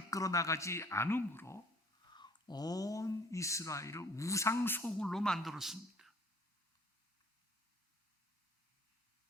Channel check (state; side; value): normal; both; correlation 0.55